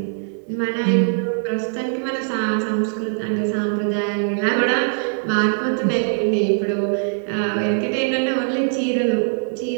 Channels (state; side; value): silent; left; digital silence